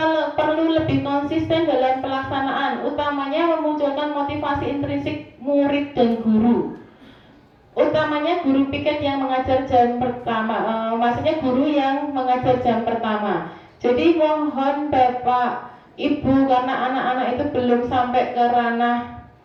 perlu lebih konsisten dalam pelaksanaan, utamanya memunculkan motivasi intrinsik murid dan guru. Utamanya guru piket yang mengajar jam pertama, maksudnya guru yang mengajar jam pertama. Jadi mohon Bapak Ibu, karena anak-anak itu belum sampai ke ranah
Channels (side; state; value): both; identical; correlation 1.00